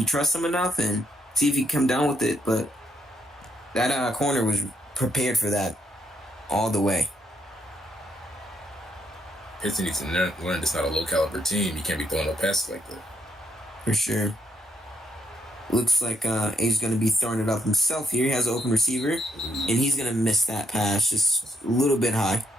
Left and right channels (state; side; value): normal; both; correlation 0.76